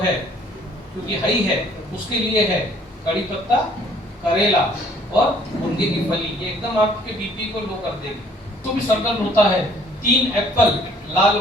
क्योंकि हाई है उसके लिए है कड़ी पत्ता, करेला और मुनगे की फली, ये एकदम आपके बीपी को लो कर देगी। तो भी सर्कल होता है। 3 एप्पल लाल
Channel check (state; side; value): normal; both; correlation 0.59